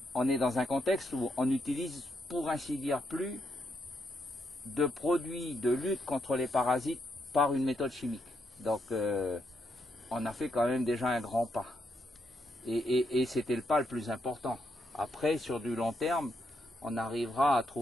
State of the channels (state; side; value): normal; both; correlation 0.79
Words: on est dans un contexte où on utilise, pour ainsi dire, plus de produits de lutte contre les parasites par une méthode chimique. Donc on a fait quand même déjà un grand pas. Et c'était le pas le plus important. Après, sur du long terme, on arrivera à